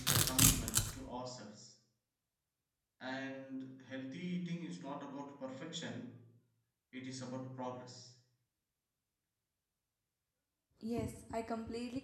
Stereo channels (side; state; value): both; identical; correlation 1.00